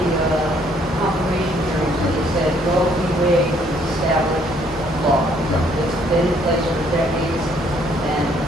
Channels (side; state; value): both; normal; correlation 0.65